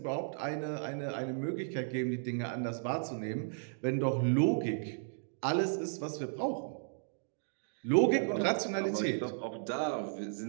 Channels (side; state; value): left; silent; digital silence